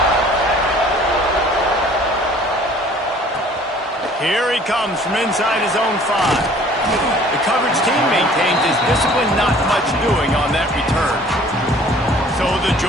Here he comes from inside his own 5. The coverage team maintains his discipline, not much doing on that return. So the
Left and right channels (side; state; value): both; normal; correlation 0.52